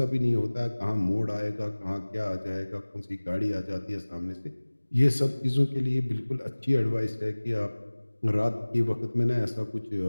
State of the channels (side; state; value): both; inverted; correlation -1.00